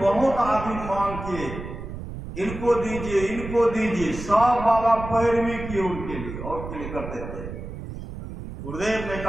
आदमी मांग किए, इनको दीजिए, इनको दीजिए, सब बाबा पैरवी किए उनके लिए और के लिए करते थे। गुरुदेव ने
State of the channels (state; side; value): noise; right; rumble, 9 dB below the sound